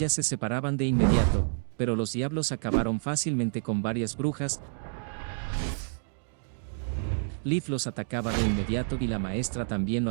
se separaban de inmediato, pero los diablos acabaron fácilmente con varias brujas. Liv los atacaba de inmediato y la maestra también lo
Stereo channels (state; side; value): silent; left; digital silence